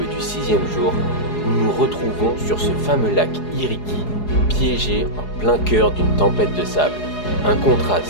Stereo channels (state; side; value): late; right; 4.8 ms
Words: du 6e jour, nous nous retrouvons sur ce fameux lac Iriki, piégé en plein cœur d'une tempête de sable. Un